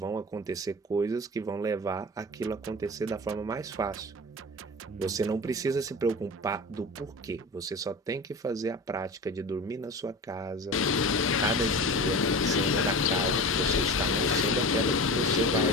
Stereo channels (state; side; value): normal; both; correlation 0.32